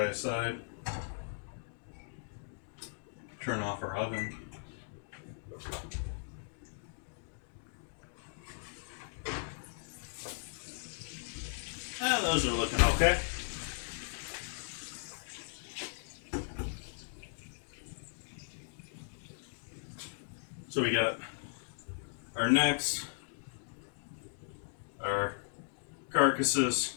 aside. Turn off our oven. Those are looking okay. So we got our necks, our carcasses,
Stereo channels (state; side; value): silent; right; digital silence